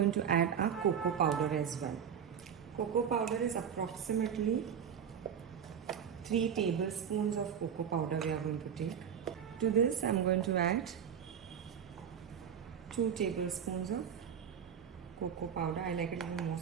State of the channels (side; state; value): left; quieter; 8.0 dB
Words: to add our cocoa powder as well. Cocoa powder is approximately 3 tablespoons of cocoa powder we are going to take. To this I'm going to add 2 tablespoons of cocoa powder. I like it a little more,